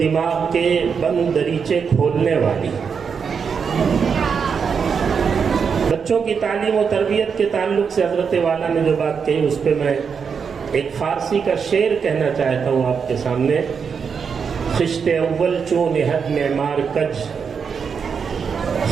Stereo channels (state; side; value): quieter; left; 6.2 dB